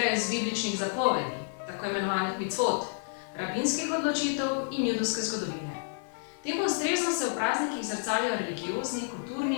iz bibličnih zapovedi, tako imenovanih micvot, rabinskih odločitev in judovske zgodovine. Temu ustrezno se v praznikih zrcalijo religiozni,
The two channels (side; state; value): right; silent; digital silence